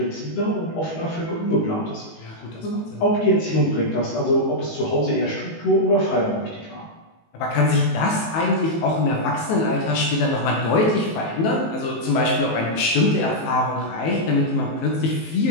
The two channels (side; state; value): right; late; 19 ms